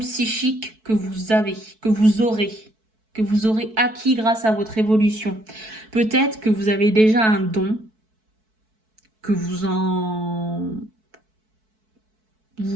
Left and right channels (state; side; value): late; left; 4.6 ms